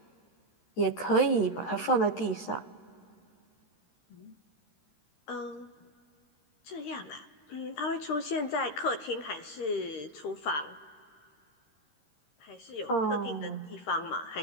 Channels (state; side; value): late; right; 13 ms